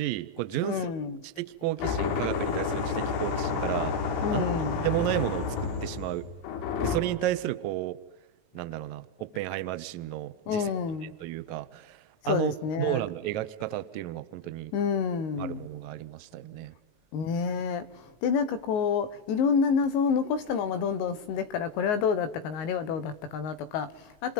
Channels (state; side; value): late; right; 18 ms